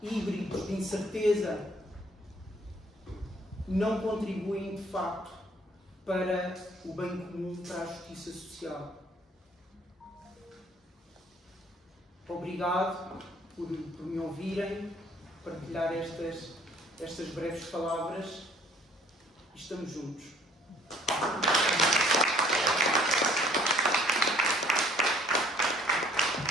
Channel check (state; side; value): normal; both; correlation 0.57